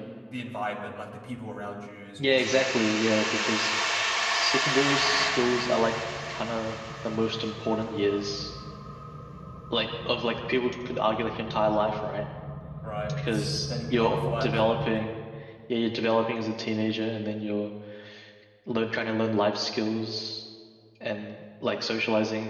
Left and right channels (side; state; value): both; identical; correlation 1.00